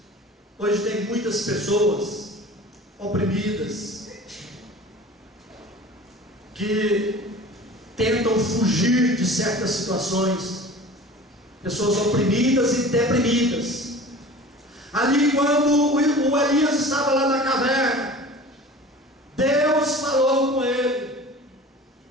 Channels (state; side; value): normal; both; correlation 0.40